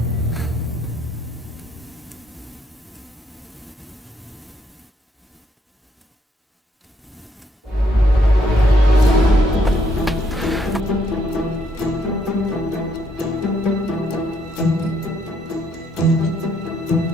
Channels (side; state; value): both; normal; correlation 0.72